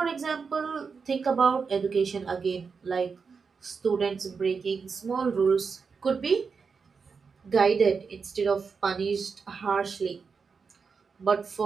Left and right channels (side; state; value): left; quieter; 5.3 dB